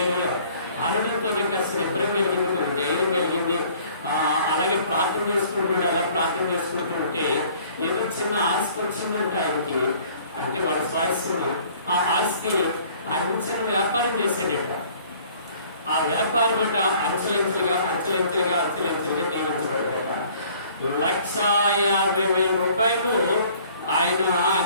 అనడంతో నీకు అసలు నిబ్బరం కలిగింది, నీకు ధైర్యం కలిగింది. అలాగే ప్రార్థన చేసుకుంటాడు. అలా ప్రార్థన చేసుకుంటుంటే ఏదో చిన్న ఆస్తి వచ్చిందంటే ఆయనకి, అంటే వాడి స్వాస్థ్యం, ఆ ఆస్తి అంచెల వ్యాపారం చేశాడట. ఆ వ్యాపారం అట అంచెలంచెలుగా నియమించబడ్డాట. 150,000 రూపాయలు ఆయన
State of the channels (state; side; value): inverted; both; correlation -0.55